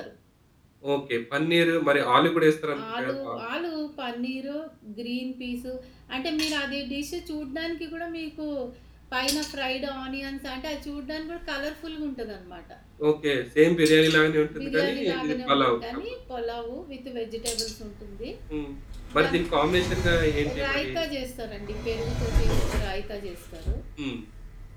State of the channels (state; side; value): identical; both; correlation 1.00